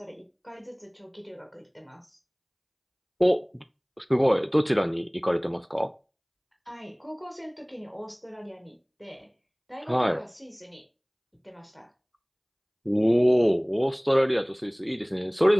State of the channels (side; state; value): both; identical; correlation 1.00